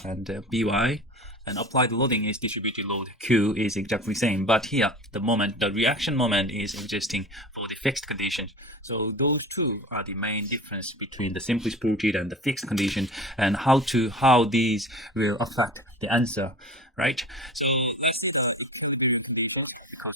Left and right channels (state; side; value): normal; both; correlation 0.36